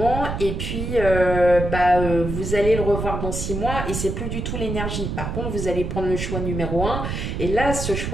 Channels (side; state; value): right; noise; rumble, 3 dB below the sound